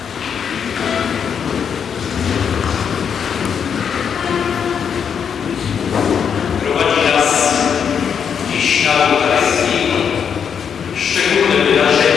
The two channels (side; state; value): right; quieter; 7.3 dB